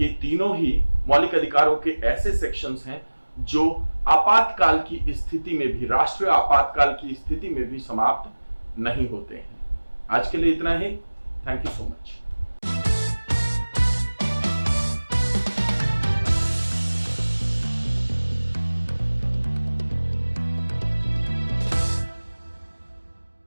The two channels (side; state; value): both; inverted; correlation -1.00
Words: तीनों ही मौलिक अधिकारों के ऐसे सेक्शंस हैं जो आपातकाल की स्थिति में भी, राष्ट्रीय आपातकाल की स्थिति में भी समाप्त नहीं होते हैं। आज के लिए इतना ही। Thank you so much.